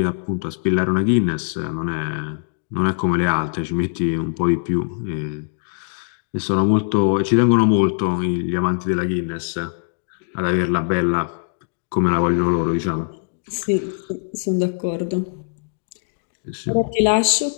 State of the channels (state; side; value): silent; right; digital silence